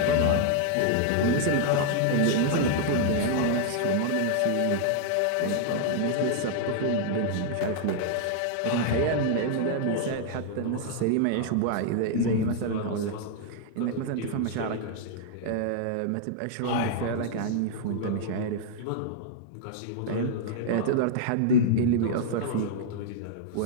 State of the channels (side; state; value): both; different; correlation -0.01